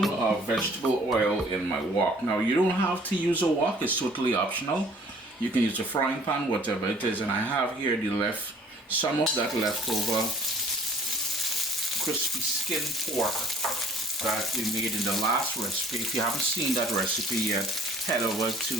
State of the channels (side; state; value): both; normal; correlation 0.54